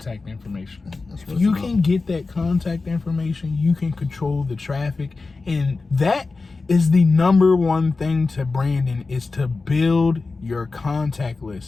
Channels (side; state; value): right; quieter; 3.9 dB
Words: information. That's If what you it's can about. get that contact information, you can control the traffic. And that is the number one thing to branding, is to build your contact